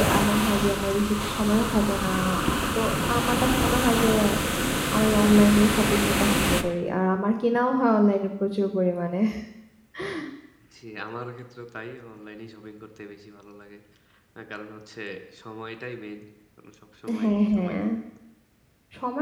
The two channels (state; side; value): identical; both; correlation 1.00